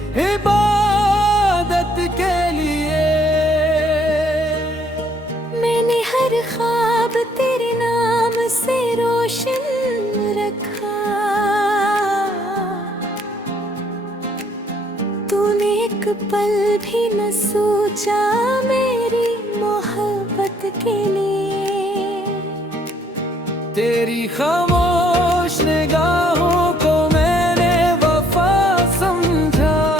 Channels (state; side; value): normal; both; correlation 0.65